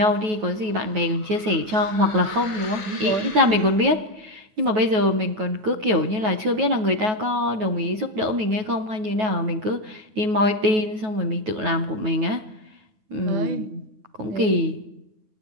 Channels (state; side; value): late; left; 9.3 ms